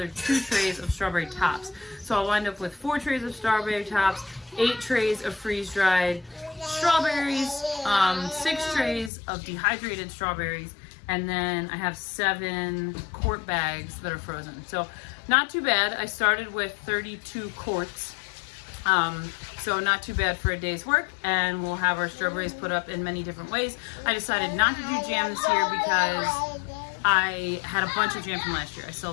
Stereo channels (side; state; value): right; drops out; at 9.1 s